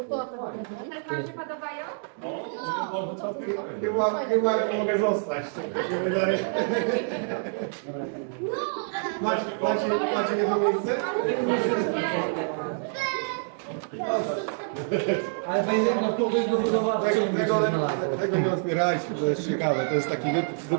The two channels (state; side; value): silent; left; digital silence